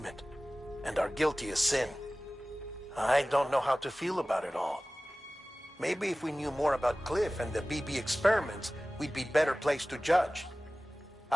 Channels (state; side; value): normal; both; correlation 0.98